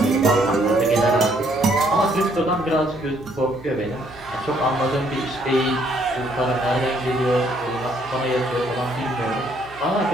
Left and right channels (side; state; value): right; noise; hum, 22 dB below the sound